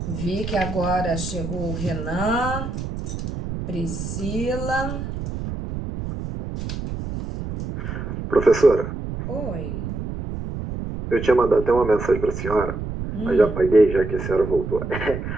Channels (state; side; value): noise; right; rumble, 6 dB below the sound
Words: Vi que agora chegou o Renan, Priscila. Professora, Oi. eu tinha mandado até uma mensagem para a senhora, mas já apaguei, já que a senhora voltou.